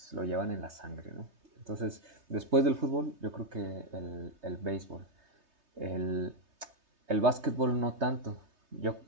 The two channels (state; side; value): late; left; 3.2 ms